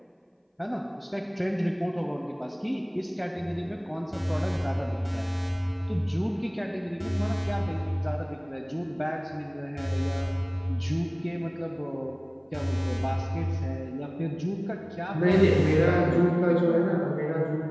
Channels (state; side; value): identical; both; correlation 1.00